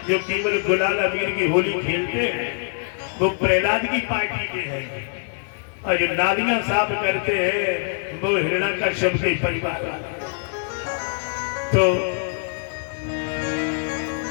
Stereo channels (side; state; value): right; silent; 63 dB below the other